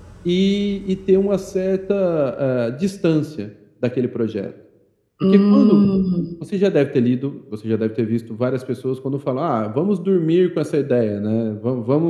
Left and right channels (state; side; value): identical; both; correlation 1.00